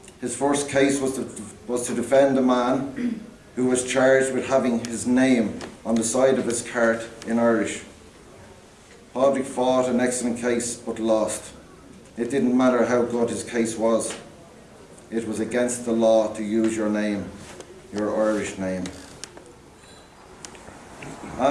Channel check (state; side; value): identical; both; correlation 1.00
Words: His first case was to defend a man who was charged with having his name on the side of his cart in Irish. Padraig fought an excellent case but lost. It didn't matter how good his case was. It was against the law to use your name, your Irish name.